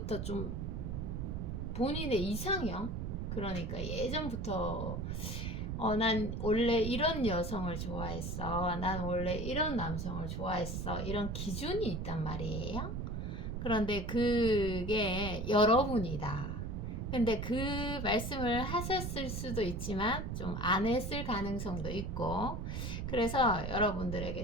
좀 본인의 이상형, 그러니까 예전부터 난 원래 이런 여성을 좋아했어, 난 원래 이런 남성을 좋아했어, 이런 기준이 있단 말이에요. 그런데 그게 여러분이다. 근데 그 말씀을 하셨을 수도 있지만 좀 안 했을 가능성도 있고, 그래서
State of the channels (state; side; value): noise; right; rumble, 3 dB below the sound